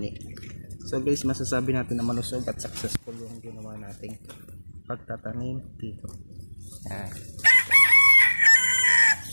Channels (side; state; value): both; inverted; correlation -1.00